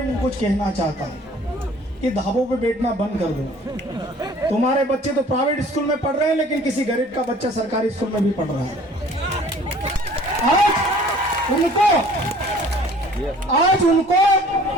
मैं कुछ कहना चाहता हूं कि ढाबों पे बैठना बंद कर दो। तुम्हारे बच्चे तो प्राइवेट स्कूल में पढ़ रहे हैं, लेकिन किसी गरीब का बच्चा सरकारी स्कूल में भी पढ़ रहा है। आज उनको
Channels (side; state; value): both; normal; correlation 0.52